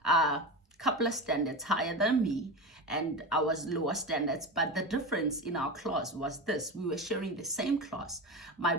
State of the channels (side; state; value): both; normal; correlation 0.23